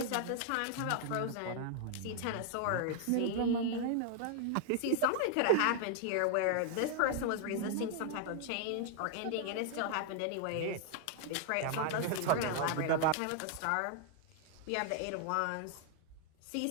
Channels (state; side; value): different; both; correlation 0.00